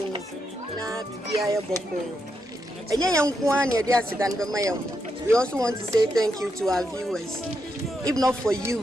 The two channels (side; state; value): both; normal; correlation 0.82